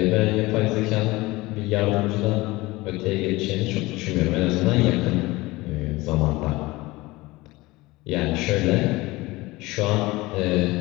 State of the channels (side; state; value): right; quieter; 20.8 dB